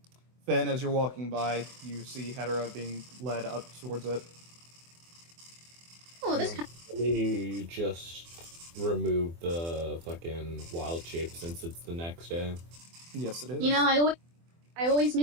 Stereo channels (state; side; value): late; left; 24 ms